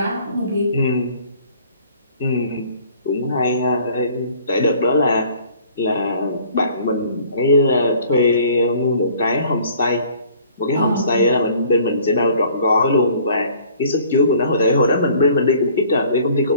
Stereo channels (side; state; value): both; inverted; correlation -0.55